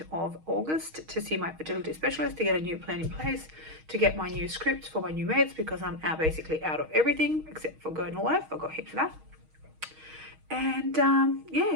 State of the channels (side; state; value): left; late; 6.4 ms